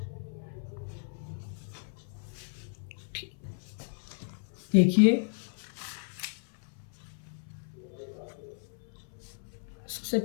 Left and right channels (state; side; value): silent; right; 55 dB below the other